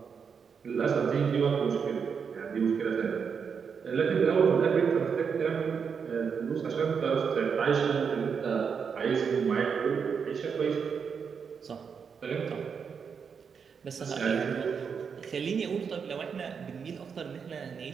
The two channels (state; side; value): quieter; left; 6.3 dB